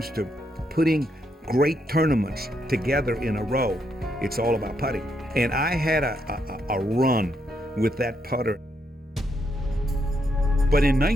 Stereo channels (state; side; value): normal; both; correlation 0.78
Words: to putting great tournaments together in a row, it's all about putting. And I had a run with that putter. But in